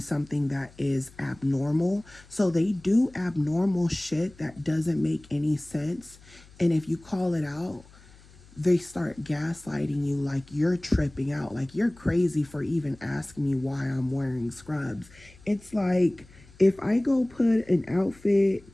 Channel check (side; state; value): left; noise; hum, 24 dB below the sound